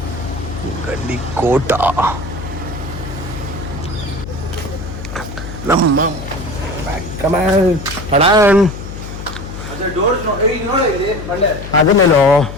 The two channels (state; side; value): noise; left; hum, 10 dB below the sound